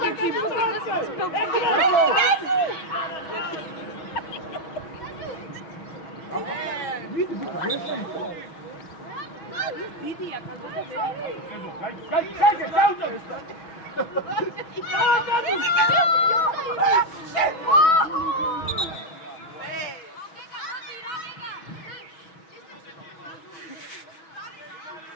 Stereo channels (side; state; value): right; late; 6.2 ms